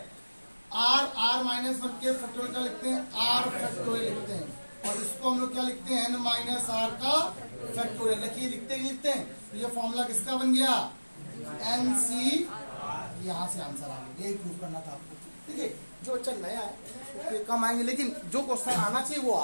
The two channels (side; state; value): both; inverted; correlation -1.00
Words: r माइनस वन के फैक्टोरियल क्या लिखते हैं r फैक्टोरियल लिखते हैं, और इसको हम लोग क्या लिखते हैं n माइनस आर का फैक्टोरियल। देखिए लिखते हैं तो ये फॉर्मूला किसका बन गया nc, यहाँ से आंसर आ गया, यही प्रूव करना था आपको। ठीक है, जो बच्चा नया है तो कम आएंगे, लेकिन जो क्वेश्चन आना चाहिए वो